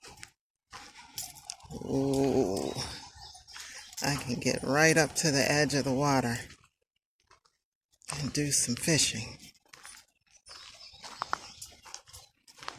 Ooh. I can get right up to the edge of the water and do some fishing.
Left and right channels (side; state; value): both; identical; correlation 1.00